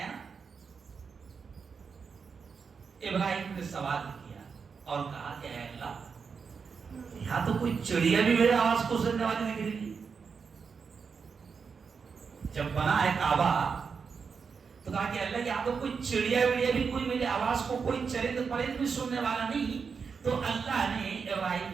نا؟ ابراہیم نے سوال کیا اور کہا کہ اے اللہ، یہاں تو کوئی چڑیا بھی میرے آواز کو سننے والی نہیں رہی. جب بنا ہے کعبہ تو کہا کہ اللہ یہاں تو کوئی چڑیا وڑیا بھی کوئی میری آواز کو، کوئی چرند پرند بھی سننے والا نہیں. تو اللہ نے ابراہیم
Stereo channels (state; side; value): quieter; left; 5.7 dB